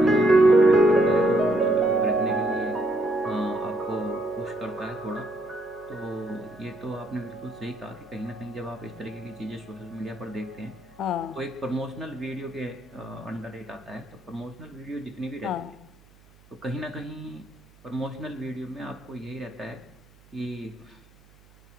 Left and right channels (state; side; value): noise; right; hum, 27 dB below the sound